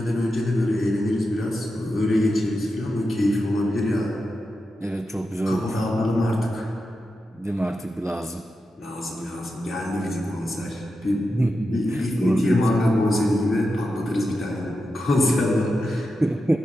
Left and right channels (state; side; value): normal; both; correlation 0.89